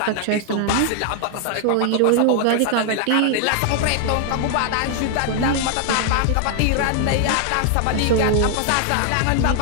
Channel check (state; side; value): different; both; correlation 0.00